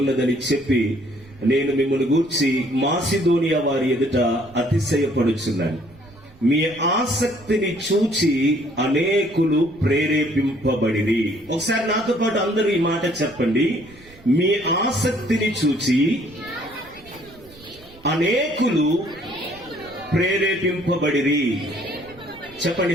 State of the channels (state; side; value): noise; right; rumble, 25 dB below the sound